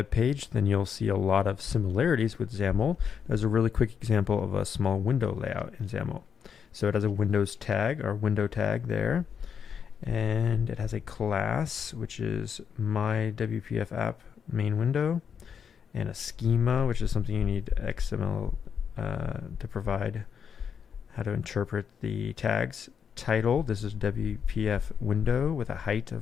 page, then you'll see a lot of similarities with XAML. There's a really quick example of a small window layout in XAML. So it has a Windows tag or window tag there. And it has a class, which is my WPF app main window, and a schema, which is something you need XML to provide how to interpret the tags. Title, this is WPF window with a height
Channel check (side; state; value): right; quieter; 7.2 dB